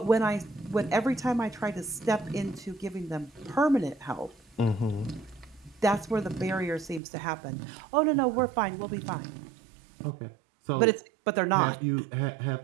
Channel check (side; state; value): left; drops out; at 7.0 s